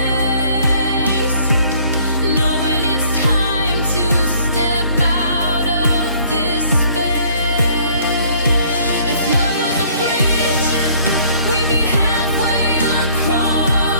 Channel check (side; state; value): both; inverted; correlation -0.59